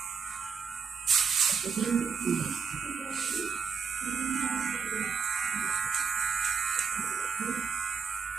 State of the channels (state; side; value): quieter; left; 6.0 dB